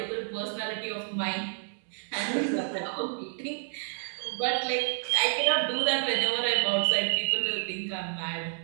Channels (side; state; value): left; silent; 57 dB below the other